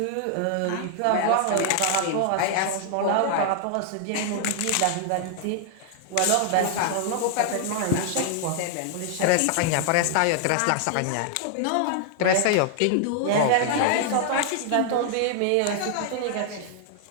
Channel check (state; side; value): different; both; correlation 0.00